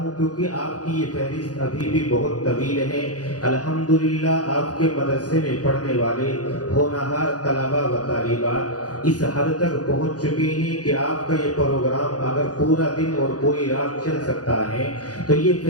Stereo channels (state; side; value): late; right; 0.68 ms